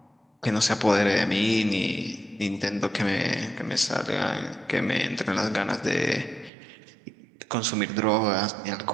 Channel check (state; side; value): drops out; left; at 6.5 s